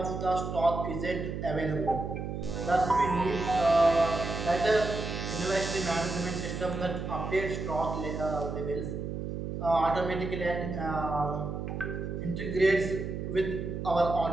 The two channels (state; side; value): noise; right; hum, 5 dB below the sound